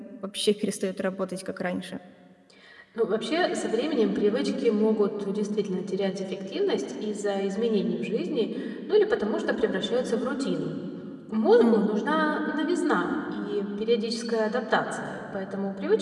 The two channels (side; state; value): both; identical; correlation 1.00